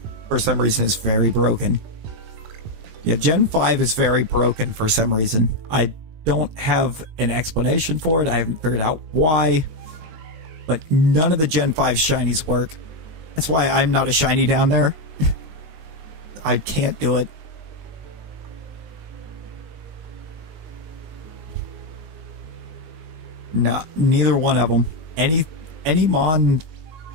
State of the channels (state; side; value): late; left; 19 ms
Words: for some reason, is very broken. Yeah, Gen 5 is very broken for some reason. I don't have an explanation for it. I haven't figured out why. But none of the Gen 5 shinies work. That's why I'm not a shiny down there. I can't do it. No, neither one of them. Any mon